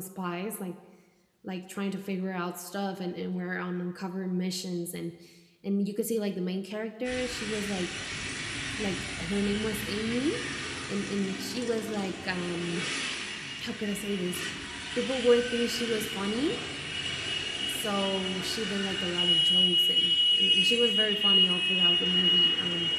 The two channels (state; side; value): identical; both; correlation 1.00